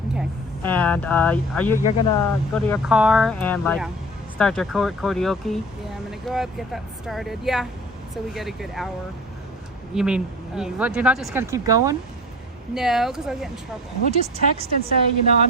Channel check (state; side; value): normal; both; correlation 0.40